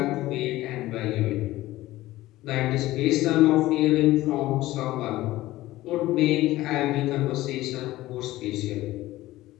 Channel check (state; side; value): quieter; right; 16.7 dB